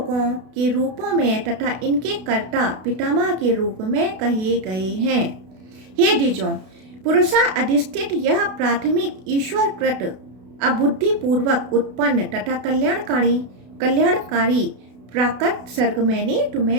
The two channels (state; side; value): late; left; 32 ms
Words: के रूपों में तथा इनके कर्ता पितामह के रूप में कहे गए हैं। हे द्विजों, पुरुषा अधिष्ठित यह प्राथमिक ईश्वरकृत अबुद्धिपूर्वक उत्पन्न तथा कल्याणकारी प्राकृत सर्ग मैंने